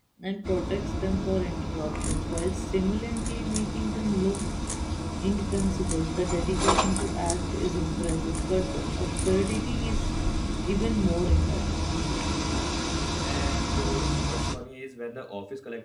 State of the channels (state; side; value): identical; both; correlation 1.00